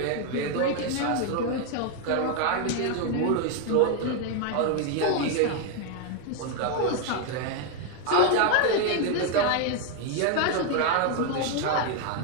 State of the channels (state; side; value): different; both; correlation 0.01